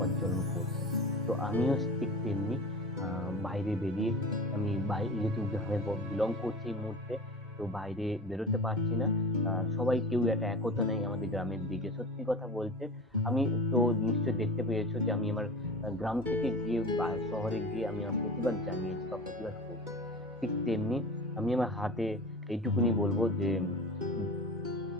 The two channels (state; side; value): normal; both; correlation 0.33